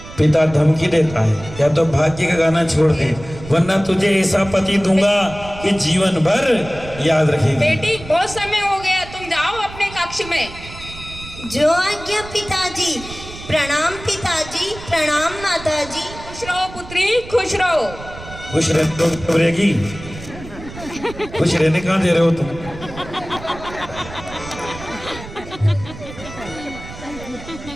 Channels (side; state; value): right; noise; rumble, 14 dB below the sound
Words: पिता धमकी देता है, या तो भाग्य का गाना छोड़ दे, वरना तुझे ऐसा पति दूंगा कि जीवन भर याद रखेगी। बेटी, बहुत समय हो गया, तुम जाओ अपने कक्ष में। जो आज्ञा पिताजी। प्रणाम पिताजी, प्रणाम माताजी। खुश रहो पुत्री, खुश रहो। खुश रहने तो घबरेगी, खुश रहने कहाँ दे रहे हो तुम?